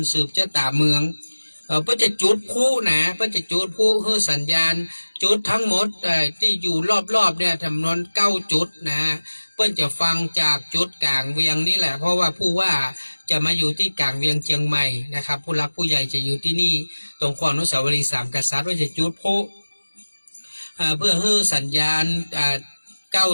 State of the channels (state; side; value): inverted; both; correlation -1.00